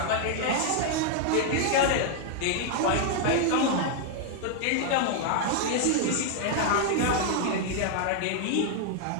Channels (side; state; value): both; different; correlation 0.00